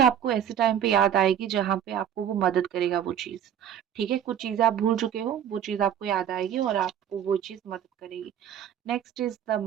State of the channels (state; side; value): quieter; left; 9.6 dB